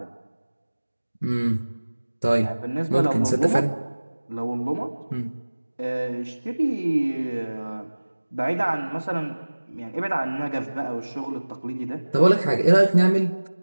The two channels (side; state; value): both; inverted; correlation -1.00